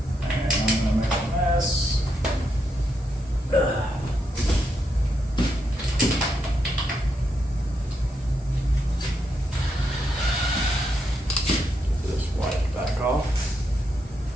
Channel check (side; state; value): both; normal; correlation 0.81